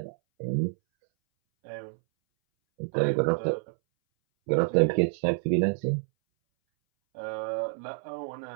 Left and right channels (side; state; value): left; silent; 59 dB below the other